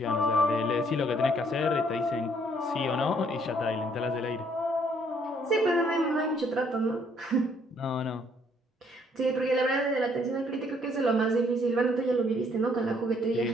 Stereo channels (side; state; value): both; normal; correlation 0.66